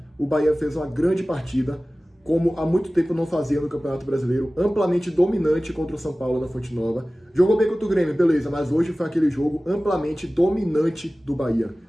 O Bahia fez uma grande partida, como há muito tempo não fazia no Campeonato Brasileiro, amplamente dominante contra o São Paulo na Fonte Nova. Jogou bem contra o Grêmio, beleza, mas hoje foi aquele jogo amplamente dominante do Bahia.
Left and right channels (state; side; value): normal; both; correlation 0.97